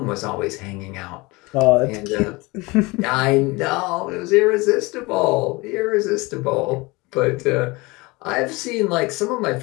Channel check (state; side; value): quieter; right; 24.0 dB